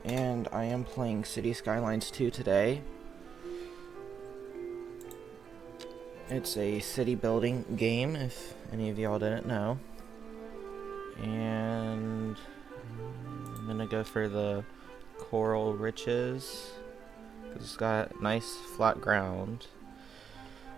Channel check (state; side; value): quieter; left; 6.9 dB